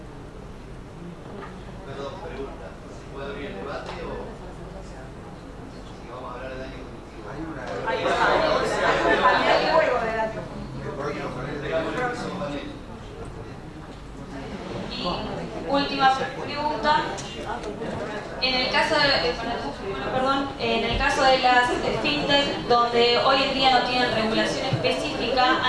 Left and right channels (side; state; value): both; identical; correlation 1.00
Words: Perdón, pregunta. ¿Se puede abrir el debate o si vamos a hablar de daño cognitivo? Hay juego de daño Y última pregunta. En el caso de las fintech, donde hoy en día no tienen regulación específica,